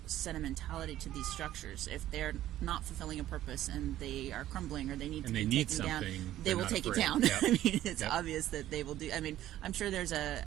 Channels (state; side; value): quieter; left; 13.4 dB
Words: sentimentality to these structures. If they're not fulfilling a purpose and they are crumbling or they need to be taken down, they will take it down. I mean, it's obvious that they will do. I mean, I'm sure there's